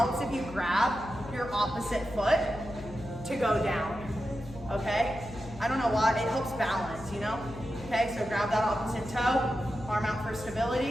if you grab your opposite foot to go down, okay? I don't know why, it helps balance, you know? Okay, so grab that opposite toe, arm out for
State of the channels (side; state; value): left; noise; hum, 15 dB below the sound